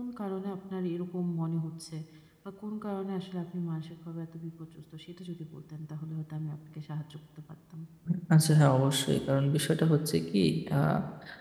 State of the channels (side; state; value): both; identical; correlation 1.00